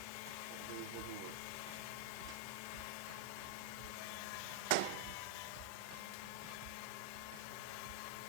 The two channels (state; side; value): different; both; correlation -0.01